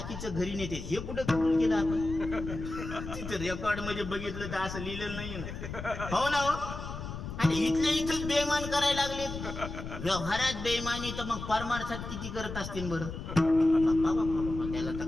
घरी नेते. हे कुठं कबूल केलं आपण? तिथं रेकॉर्ड मध्ये बघितलं तर असं लिहिलेलं नाही ना. हो ना हो. आणि इथल्या इथंच बेईमान करायला लागले. व्यवहारात बेईमानी तर मग परमार्थात किती करत असतील बरं. त्याला तर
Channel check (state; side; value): noise; left; rumble, 8 dB below the sound